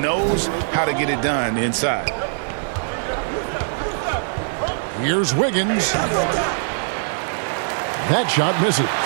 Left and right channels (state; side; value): silent; left; 58 dB below the other